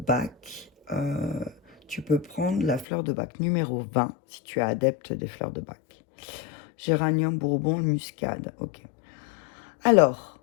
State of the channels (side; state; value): right; drops out; at 2.9 s